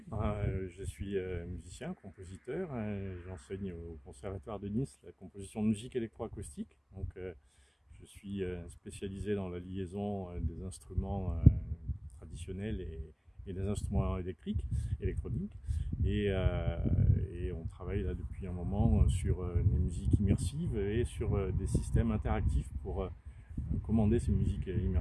je suis musicien, compositeur. J'enseigne au Conservatoire de Nice la composition de musique électroacoustique. Donc, je suis spécialisé dans la liaison des instruments traditionnels et des instruments électroniques. Et, euh, et on travaille là depuis un moment sur des musiques immersives et sur des systèmes interactifs pour commander ces musiques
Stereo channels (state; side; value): identical; both; correlation 1.00